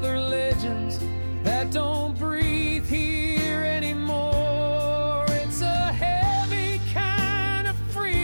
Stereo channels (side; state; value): both; inverted; correlation -1.00